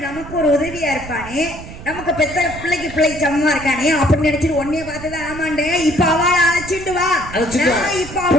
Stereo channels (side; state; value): right; noise; rumble, 13 dB below the sound